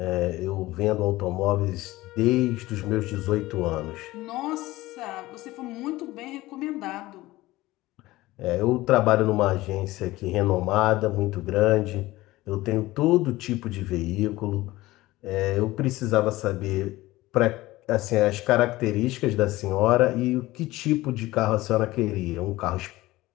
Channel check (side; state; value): right; quieter; 18.3 dB